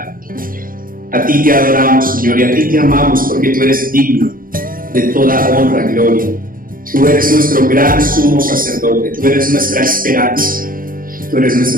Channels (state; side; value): late; left; 0.41 ms